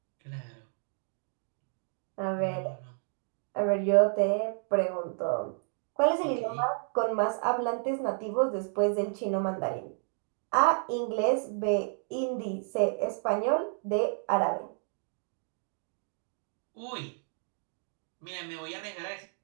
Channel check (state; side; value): silent; left; 57 dB below the other